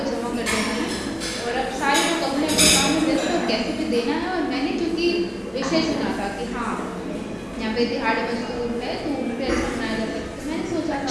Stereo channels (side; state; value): both; identical; correlation 1.00